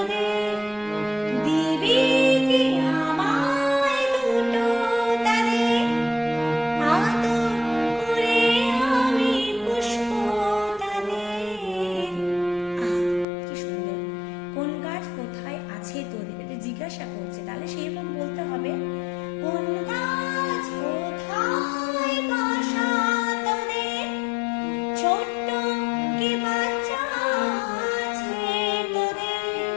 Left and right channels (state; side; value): drops out; right; at 13.2 s